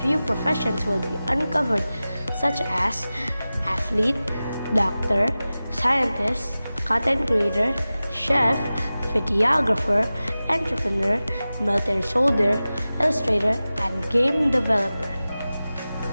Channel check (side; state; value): both; inverted; correlation -0.96